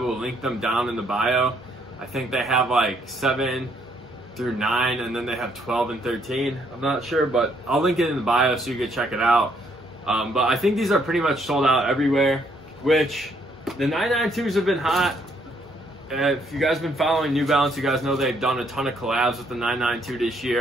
link them down in the bio. I think they have like 7 through 9, and then they have 12 and 13. I'm not sure, but I'll link it in the bio so you can check it out. But I think these are pretty much sold out everywhere, which the 992s have been hot. If you guys have been following New Balance, you guys know they've done a ton of collabs with the 992 this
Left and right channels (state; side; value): normal; both; correlation 0.69